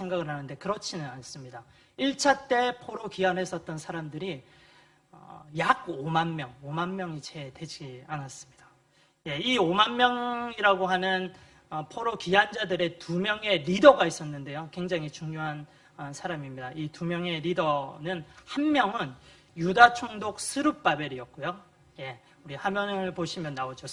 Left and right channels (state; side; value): identical; both; correlation 1.00